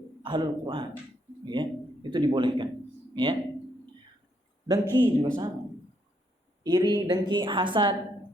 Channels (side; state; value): both; normal; correlation 0.74